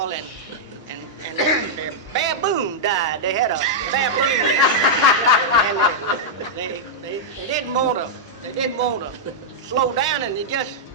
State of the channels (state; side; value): normal; both; correlation -0.07